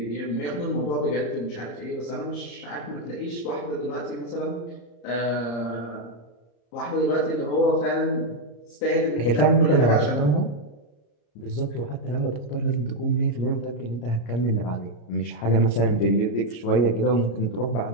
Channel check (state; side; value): late; right; 34 ms